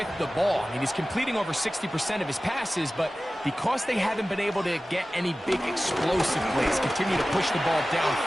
the ball. I mean, he's completing over 60% of his passes, but because they haven't been able to get any big explosive plays, continue to push the ball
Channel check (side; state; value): both; normal; correlation 0.96